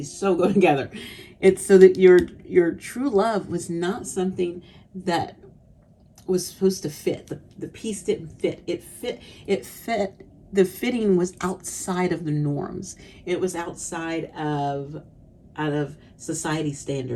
so go together. It's so that your true love was not something that was supposed to fit. The piece didn't fit. It fit. The fitting was outside of the norms. It was outside of society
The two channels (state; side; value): identical; both; correlation 1.00